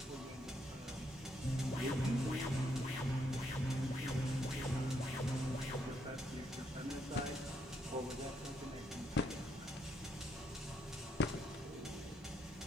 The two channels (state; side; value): normal; both; correlation 0.75